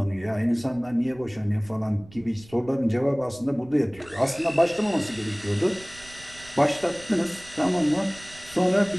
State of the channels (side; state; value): right; noise; rumble, 22 dB below the sound